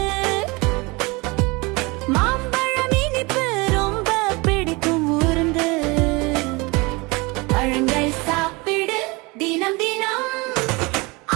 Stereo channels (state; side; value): quieter; left; 25.6 dB